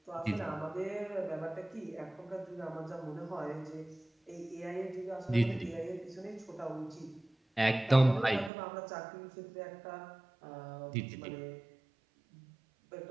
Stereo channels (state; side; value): drops out; left; at 8.5 s